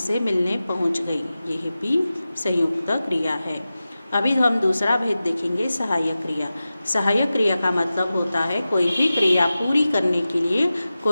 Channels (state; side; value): inverted; both; correlation -0.95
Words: मिलने पहुँच गई, यह भी संयुक्त क्रिया है। अभी हम दूसरा भेद देखेंगे, सहायक क्रिया। सहायक क्रिया का मतलब होता है कोई भी क्रिया पूरी करने के लिए